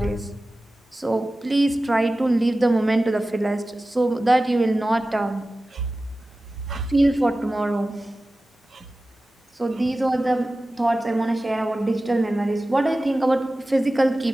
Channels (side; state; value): both; normal; correlation 0.96